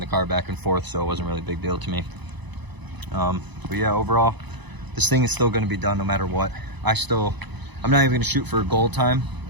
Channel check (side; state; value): left; late; 1.0 ms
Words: car back and forth, so it wasn't really a big deal to me. But yeah, overall, this thing is still going to be done no matter what. I'm not even going to shoot for a goal time,